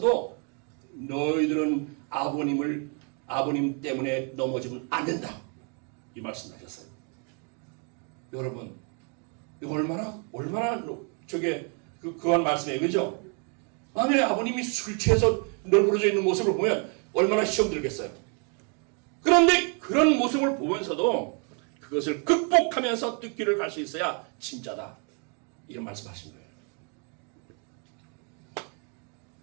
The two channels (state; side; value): quieter; left; 38.1 dB